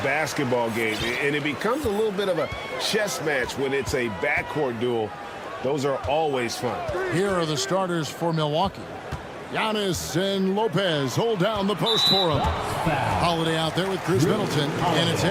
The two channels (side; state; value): both; identical; correlation 1.00